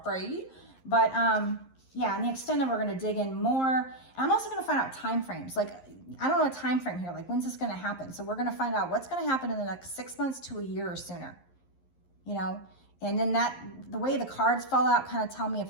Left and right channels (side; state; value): right; late; 11 ms